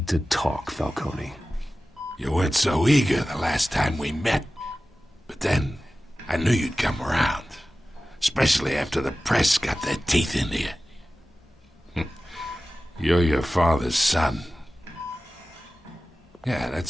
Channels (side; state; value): both; normal; correlation 0.96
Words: to talk, Falcone. You weren't so eager the last time we met. But then, I knew you'd come around. Especially after the press got their teeth into you. You're your father's son. Yeah,